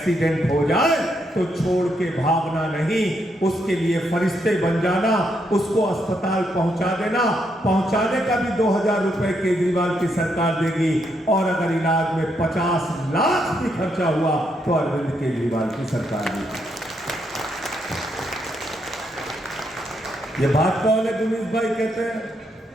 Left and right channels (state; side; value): normal; both; correlation 0.78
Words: हो जाए तो छोड़ के भागना नहीं, उसके लिए फरिश्ते बन जाना, उसको अस्पताल पहुंचा देना। पहुंचाने का भी 2000 रुपए केजरीवाल की सरकार देगी, और अगर इलाज में 50 लाख भी खर्चा हुआ तो अरविंद केजरीवाल की सरकार देगी। ये बात कौन है? गुनीश भाई कहते हैं,